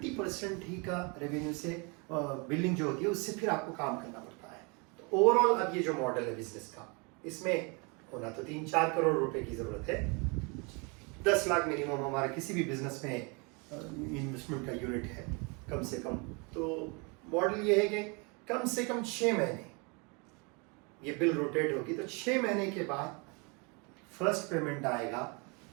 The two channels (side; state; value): left; quieter; 31.4 dB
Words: ہی کا ریونیو سے بلنگ جو ہوتی ہے اس سے پھر آپ کو کام کرنا پڑتا ہے۔ تو اوور آل اب یہ جو ماڈل ہے بزنس کا، اس میں ہونا تو 3-4 کروڑ روپے کی ضرورت ہے، 10 لاکھ منیمم ہمارا کسی بھی بزنس میں انویسٹمنٹ کا یونٹ ہے کم سے کم۔ تو ماڈل یہ ہے کہ کم سے کم 6 مہینے یہ بل روٹیٹ ہوگی، تو 6 مہینے کے بعد فرسٹ پیمنٹ آئے گا،